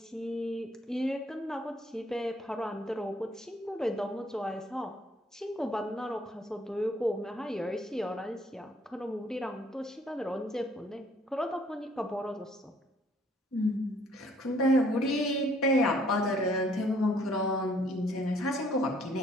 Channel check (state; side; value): normal; both; correlation 0.62